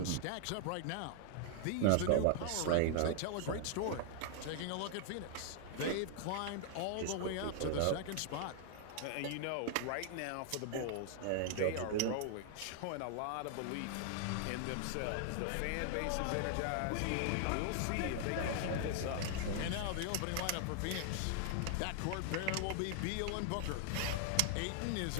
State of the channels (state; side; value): different; both; correlation 0.00